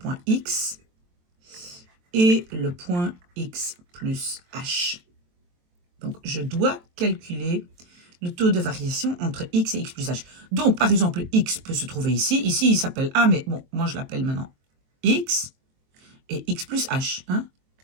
X et le point X plus H. Donc, je dois calculer le taux de variation entre x et x plus h. Donc, par exemple, x peut se trouver ici. Ici, il s'appelle a, mais bon, moi, je l'appelle maintenant x et x plus h. Hein?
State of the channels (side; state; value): left; late; 23 ms